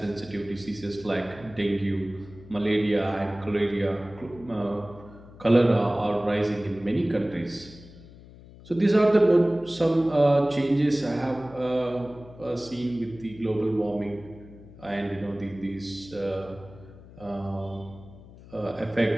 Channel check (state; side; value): noise; left; hum, 20 dB below the sound